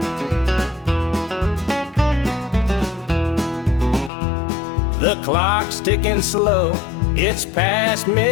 The clock's ticking slow, it's past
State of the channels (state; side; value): drops out; right; at 4.1 s